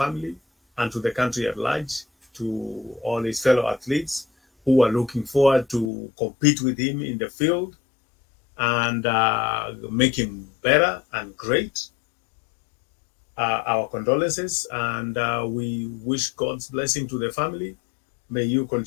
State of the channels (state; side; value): drops out; right; at 5.9 s